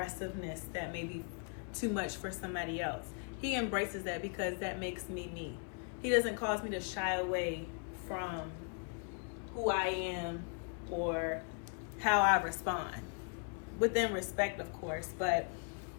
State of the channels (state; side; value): quieter; right; 38.8 dB